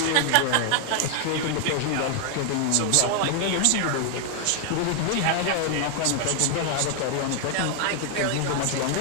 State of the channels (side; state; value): both; different; correlation 0.00